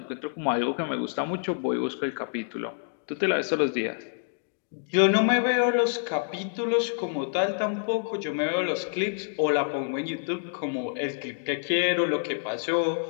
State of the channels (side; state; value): right; silent; digital silence